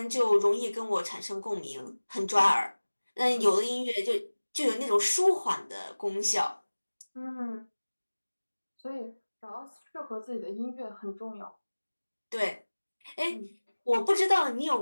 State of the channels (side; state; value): both; inverted; correlation -1.00